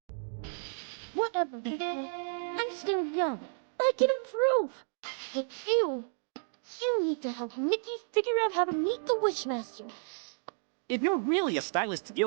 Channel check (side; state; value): left; silent; digital silence